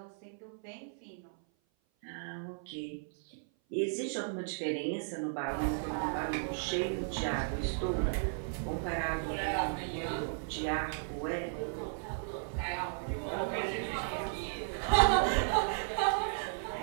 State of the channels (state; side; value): silent; left; 54 dB below the other